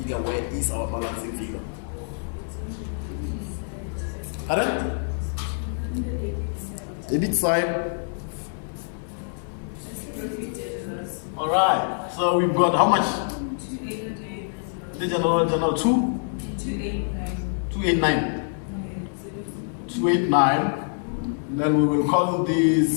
Where is our balancing figure? Pardon? Debit side. Alright, so we've got how much? The general 289. 289. Then we will call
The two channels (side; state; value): right; silent; digital silence